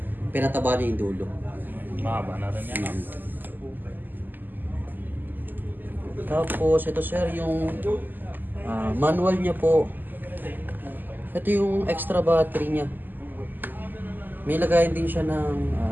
Pinataba niya yung dulo. Mahaba na rin yan. Tapos ito sir, yung manual niya po. Ito yung extra battery niya. May lagayan din siya ng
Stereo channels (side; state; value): left; late; 0.088 ms